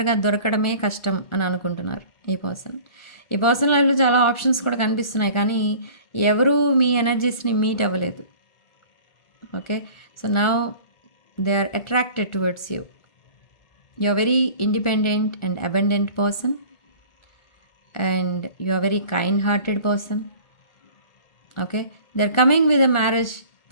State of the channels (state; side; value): late; right; 1.4 ms